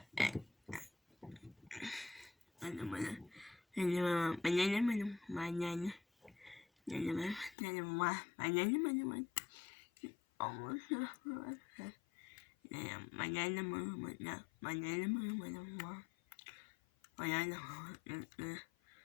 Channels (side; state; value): right; drops out; at 7.6 s